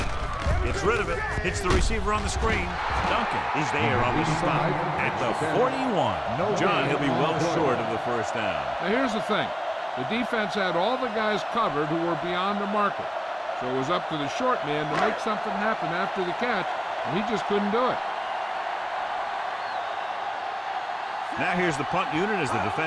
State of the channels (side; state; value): both; identical; correlation 1.00